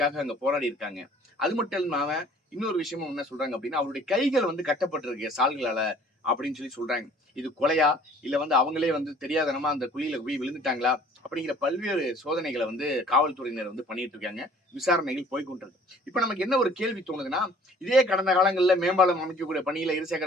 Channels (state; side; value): normal; both; correlation 0.53